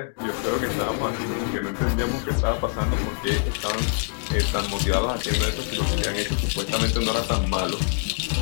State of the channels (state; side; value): silent; right; digital silence